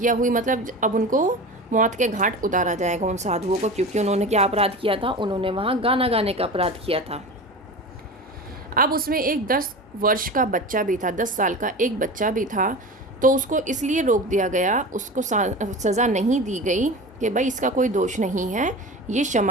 हुई, मतलब अब उनको मौत के घाट उतारा जाएगा उन साधुओं को, क्योंकि उन्होंने क्या अपराध किया था, उन्होंने वहाँ गाना गाने का अपराध किया था। अब उसमें एक 10 वर्ष का बच्चा भी था, 10 साल का एक बच्चा भी था, तो उसको इसलिए रोक दिया गया, उसको सज़ा नहीं दी गई कि भाई इसका कोई दोष नहीं है, ये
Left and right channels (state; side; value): normal; both; correlation 0.31